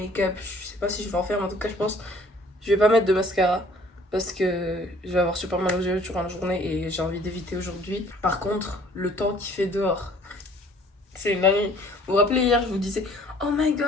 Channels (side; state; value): both; normal; correlation 0.56